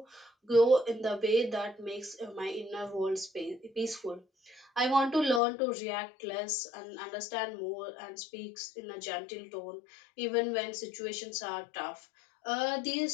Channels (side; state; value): right; drops out; at 5.4 s